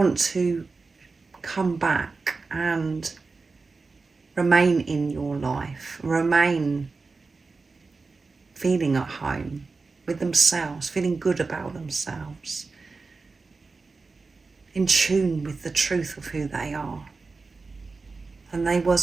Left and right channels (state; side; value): quieter; left; 4.1 dB